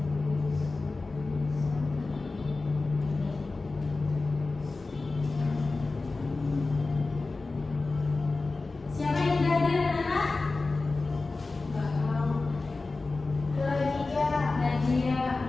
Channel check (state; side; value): quieter; right; 3.6 dB